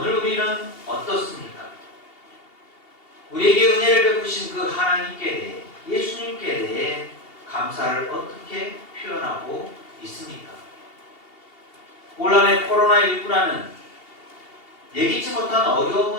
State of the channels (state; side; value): late; right; 2.8 ms